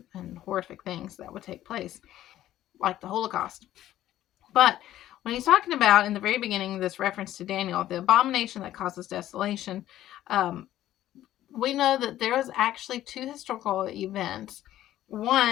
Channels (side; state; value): right; quieter; 13.2 dB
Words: and horrific things that would take place, like the Holocaust. But when he's talking about in the very beginning, this reference to Daniel, the abomination that causes desolation, we know that there was actually two historical events.